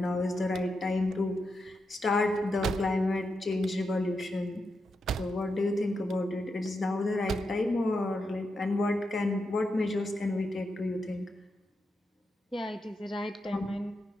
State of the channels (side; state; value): both; normal; correlation 0.86